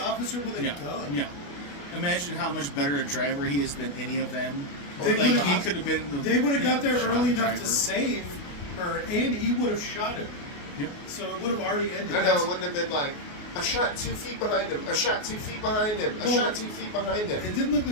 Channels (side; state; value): right; late; 28 ms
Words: with a gun. Yeah. Imagine how much better a driver he is than any of them. They Like, would've- he could have been. They would have got there shot early enough driver. to save her, and he would have shot her. Yep. So it would have already ended. I know, it wouldn't have been like, I shot 2 feet behind him, I shot 2 feet behind him, I Well, shot 2 feet behind him. It didn't look